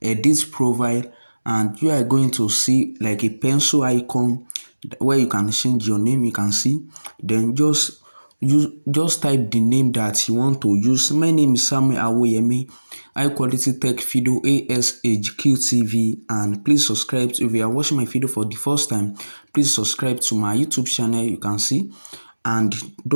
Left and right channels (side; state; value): both; inverted; correlation -1.00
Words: edit profile, and you are going to see like a pencil icon where you can change your name. You can see, then just type the name that you want to use. My name is Samuel Awoyemi, high quality tech video H-QTV, and please subscribe. If you are watching my video for the first time, please subscribe to my YouTube channel. You can see, and